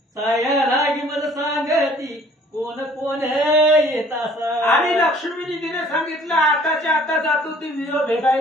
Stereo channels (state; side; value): normal; both; correlation 0.55